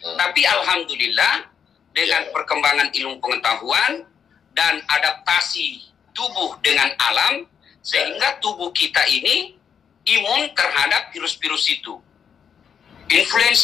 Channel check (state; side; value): quieter; right; 7.4 dB